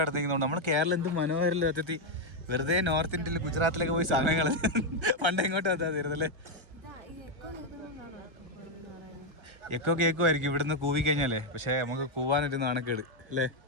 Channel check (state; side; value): late; left; 1.3 ms